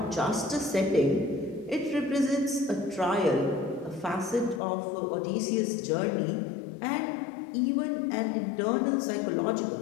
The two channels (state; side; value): drops out; right; at 4.6 s